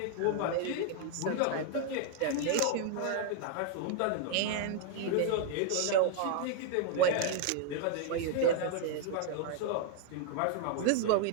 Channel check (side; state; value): both; different; correlation 0.00